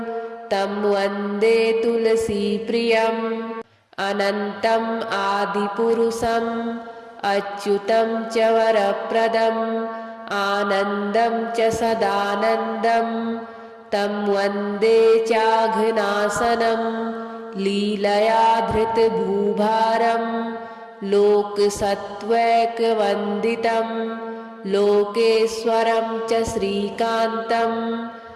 तं वन्दे तुलसीप्रियम् अनन्तम् आदिपुरुषम् अच्युतं च वरप्रदम् आनन्दं च सदानन्दं तं वन्दे चाघनाशनं लीलया धृतभूभारं लोकसत्त्वैकवन्दितं लोकेश्वरं च श्रीकान्तं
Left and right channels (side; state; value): both; identical; correlation 1.00